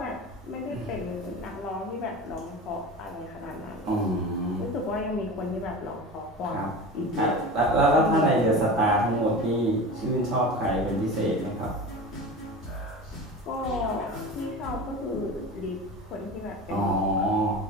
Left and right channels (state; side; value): normal; both; correlation 0.32